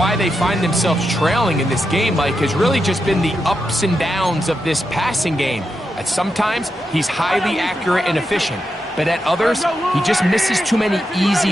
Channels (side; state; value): both; normal; correlation 0.86